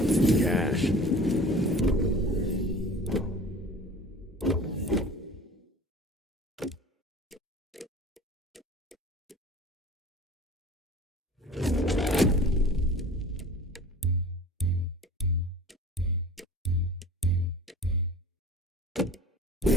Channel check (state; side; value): normal; both; correlation 0.41